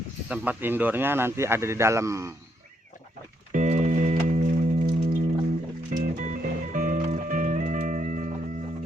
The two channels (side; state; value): both; normal; correlation 0.76